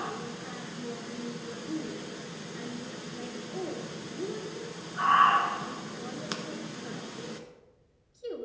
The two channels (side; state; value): both; identical; correlation 1.00